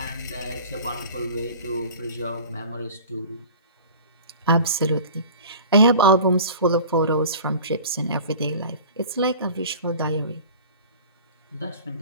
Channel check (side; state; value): both; inverted; correlation -0.41